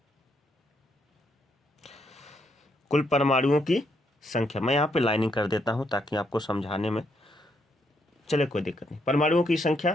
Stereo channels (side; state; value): both; normal; correlation 0.75